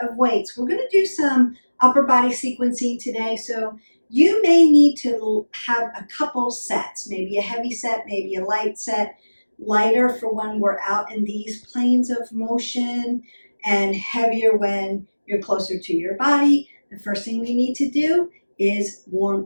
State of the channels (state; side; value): inverted; both; correlation -1.00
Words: of weights. We're going to do some upper body sequencing today. So you may need to have a couple sets, maybe a heavy set, maybe a light set. Lighter for when we're out in these planes of motion, and heavier when you're closer to your body. The first thing we need to do is